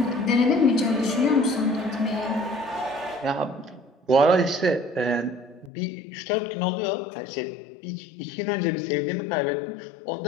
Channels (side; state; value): right; drops out; at 5.7 s